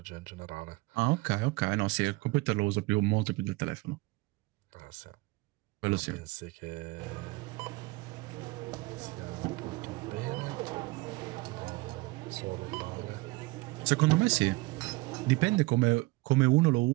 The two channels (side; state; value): left; quieter; 22.7 dB